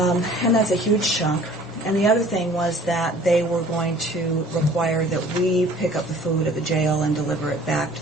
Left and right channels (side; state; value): both; normal; correlation 0.50